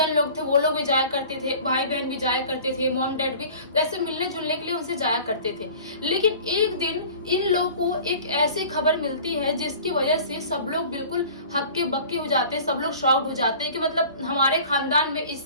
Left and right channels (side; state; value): both; inverted; correlation -0.44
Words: लोग थे वो लोग भी जाया करते थे, भाई बहन भी जाया करते थे, मॉम डैड भी ऐसे मिलने जुलने के लिए उनसे जाया करते थे। लेकिन एक दिन इन लोगों को एक ऐसी खबर मिलती है जिसकी वजह से सब लोग बिल्कुल हक्के बक्के हो जाते हैं, सब लोग शॉक्ड हो जाते हैं कि मतलब हमारे खानदान में